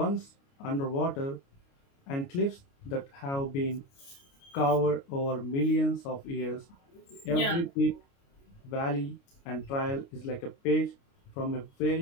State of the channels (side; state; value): right; late; 29 ms